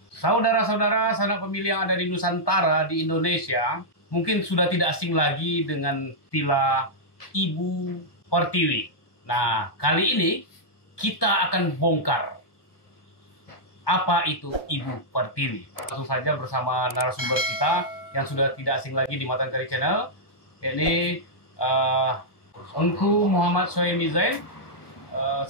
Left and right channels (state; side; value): late; right; 1.2 ms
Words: saudara-saudara sanak pemilih yang ada di Nusantara di Indonesia mungkin sudah tidak asing lagi dengan istilah Ibu Pertiwi. Nah, kali ini kita akan bongkar apa itu Ibu Pertiwi. Langsung saja bersama narasumber kita yang sudah tidak asing lagi di Matan Kari Channel, yakni Engku Muhammad Soemi Zain